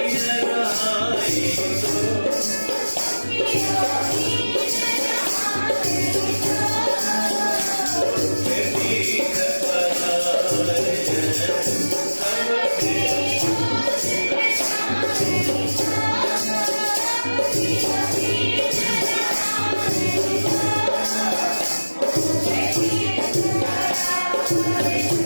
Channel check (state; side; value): inverted; both; correlation -1.00